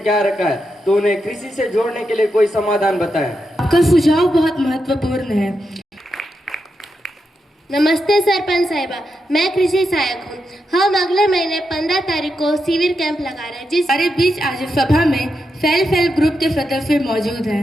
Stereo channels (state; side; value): normal; both; correlation 0.86